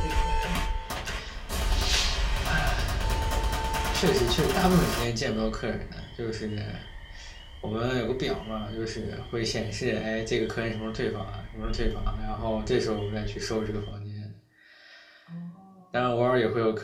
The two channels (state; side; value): identical; both; correlation 1.00